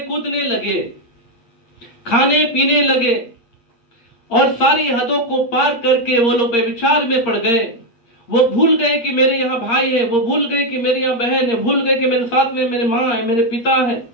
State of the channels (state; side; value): late; right; 8.6 ms